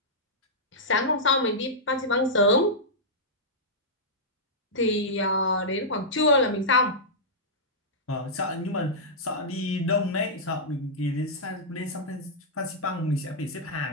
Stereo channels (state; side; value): normal; both; correlation -0.10